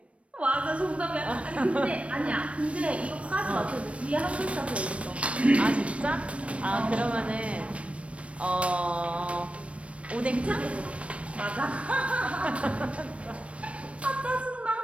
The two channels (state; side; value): late; left; 0.062 ms